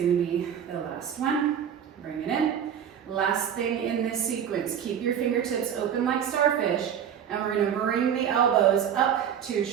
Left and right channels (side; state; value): left; quieter; 8.8 dB